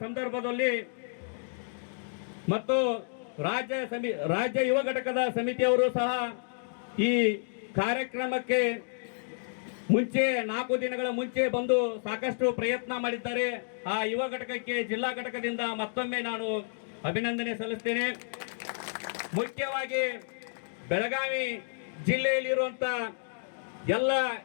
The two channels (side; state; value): right; silent; digital silence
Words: ಸಂದರ್ಭದಲ್ಲಿ ಮತ್ತು ರಾಜ್ಯ ಯುವ ಘಟಕದ ಸಮಿತಿಯವರು ಸಹ ಈ ಕಾರ್ಯಕ್ರಮಕ್ಕೆ ಮುಂಚೆ 4 ದಿನಗಳ ಮುಂಚೆ ಬಂದು ಸಾಕಷ್ಟು ಪ್ರಯತ್ನ ಮಾಡಿದ್ದಾರೆ. ಆ ಯುವ ಘಟಕಕ್ಕೆ ಜಿಲ್ಲಾ ಘಟಕದಿಂದ ಮತ್ತೊಮ್ಮೆ ನಾನು ಅಭಿನಂದನೆ ಸಲ್ಲಿಸ್ತೇನೆ. ಮುಖ್ಯವಾಗಿ ಬೆಳಗಾವಿ ಜಿಲ್ಲೆಯಲ್ಲಿರುವಂತ ಎಲ್ಲ